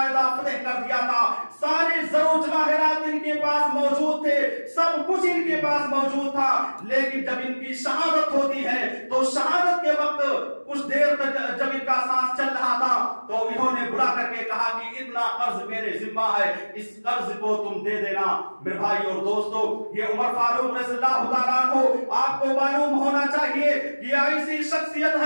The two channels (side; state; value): both; inverted; correlation -1.00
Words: फतेह कर दिया था। सारे जरो जवाहिरात इनके पास मौजूद थे, सब कुछ इनके पास मौजूद था। लेकिन जब इनकी शहादत होती है तो शहादत के वक्त कुछ देर तक जब इनका सांस चल रहा था तो इन्होंने बुला करके कहा कि इतना कर्ज मेरे जिम्मा है, इस कर्ज को तुम दे देना। मेरे भाई और दोस्तों, ये उमर फारूक रज़ियल्लाहु ताला अन्हु आपको मालूम होना चाहिए कि ऐसी शख्सियत